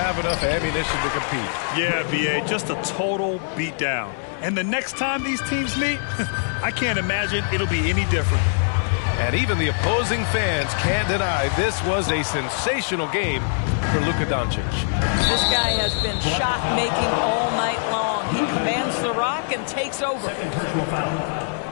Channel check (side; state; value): right; silent; digital silence